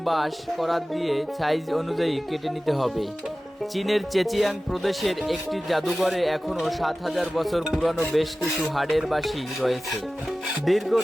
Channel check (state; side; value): normal; both; correlation 0.96